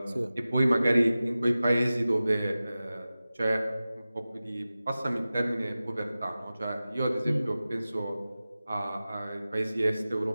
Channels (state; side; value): inverted; both; correlation -0.96